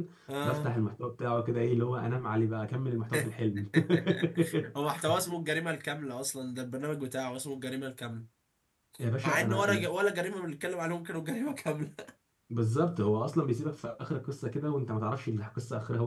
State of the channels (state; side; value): identical; both; correlation 1.00